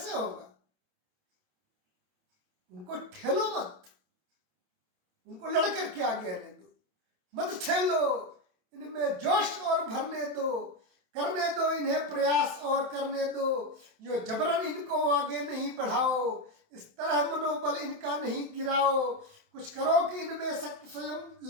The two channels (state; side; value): late; left; 27 ms